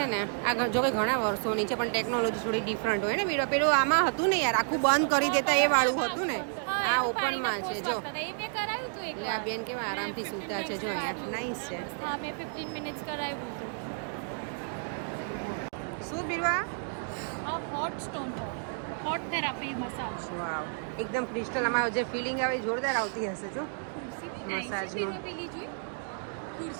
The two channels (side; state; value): left; silent; 57 dB below the other